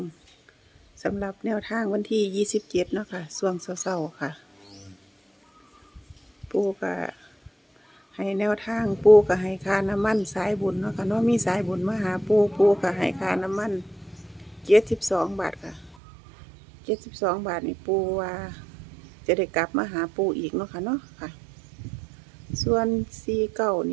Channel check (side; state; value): left; drops out; at 16.0 s